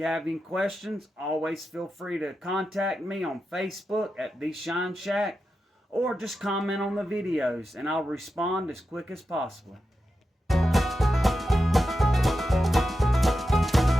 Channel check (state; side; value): normal; both; correlation 0.89